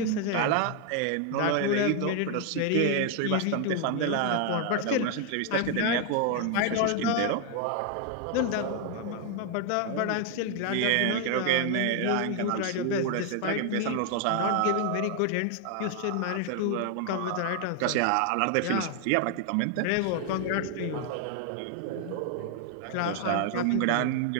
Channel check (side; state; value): both; different; correlation 0.00